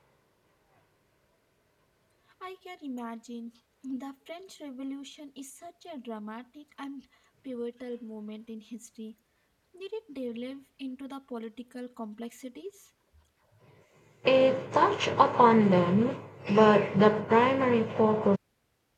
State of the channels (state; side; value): identical; both; correlation 1.00